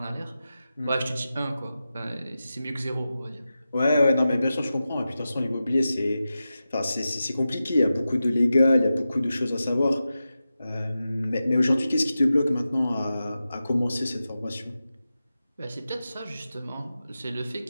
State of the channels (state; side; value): inverted; both; correlation -0.92